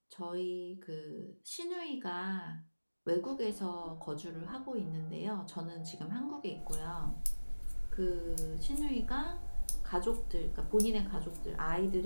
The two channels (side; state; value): both; inverted; correlation -1.00